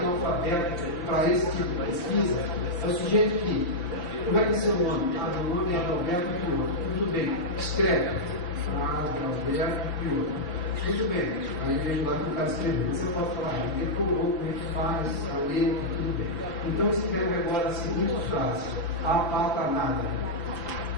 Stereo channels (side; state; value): right; late; 5.8 ms